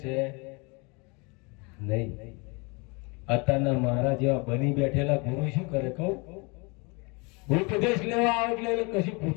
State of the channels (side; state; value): right; quieter; 29.8 dB